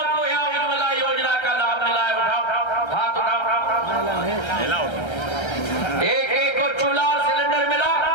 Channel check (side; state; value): right; late; 1.3 ms